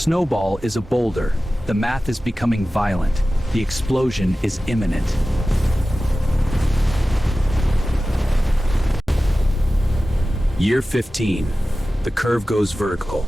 is a boulder. The math is becoming violent. The explosion is imminent. Year 15. The curve goes vertical.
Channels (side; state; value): both; normal; correlation 0.95